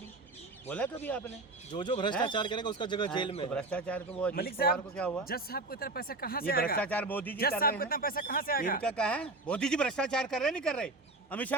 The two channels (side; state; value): left; quieter; 3.1 dB